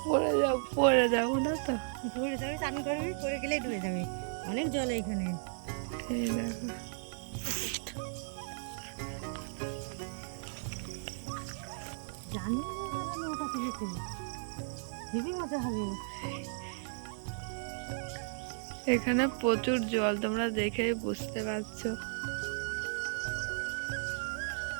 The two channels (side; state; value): left; silent; digital silence